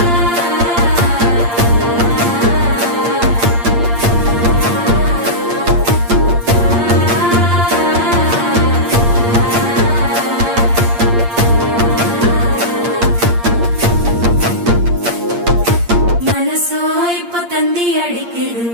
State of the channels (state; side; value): late; left; 8.6 ms